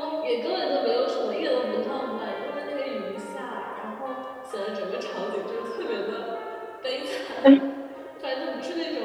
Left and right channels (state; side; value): identical; both; correlation 1.00